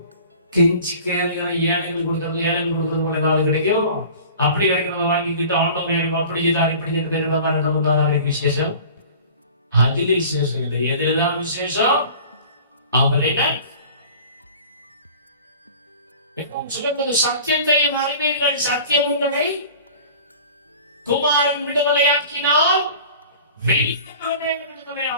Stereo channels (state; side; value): inverted; both; correlation -0.43